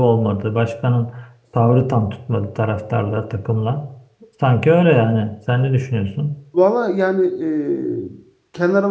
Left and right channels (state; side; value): identical; both; correlation 1.00